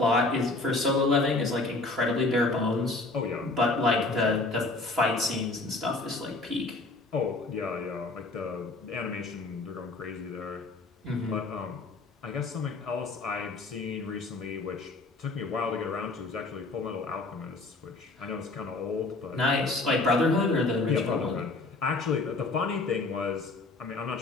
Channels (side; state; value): right; quieter; 3.3 dB